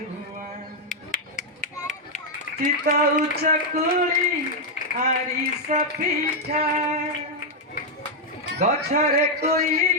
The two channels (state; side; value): normal; both; correlation -0.01